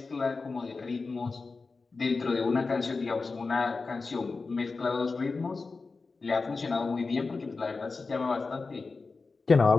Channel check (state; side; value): quieter; right; 4.1 dB